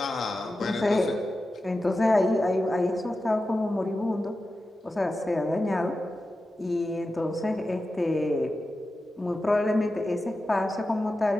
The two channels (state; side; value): normal; both; correlation 0.92